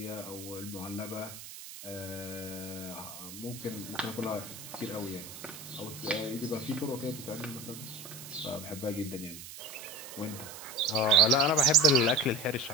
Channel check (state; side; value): noise; right; hiss, 13 dB below the sound